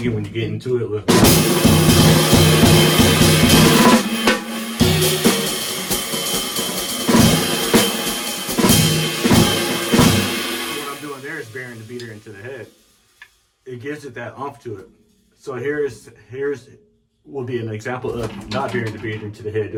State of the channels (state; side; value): identical; both; correlation 1.00